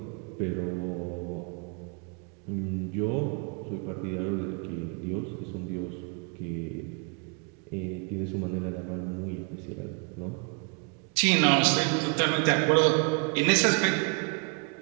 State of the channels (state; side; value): quieter; left; 36.7 dB